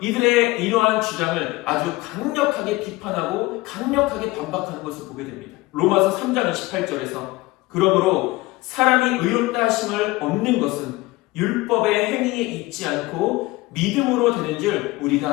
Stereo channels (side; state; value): right; quieter; 20.6 dB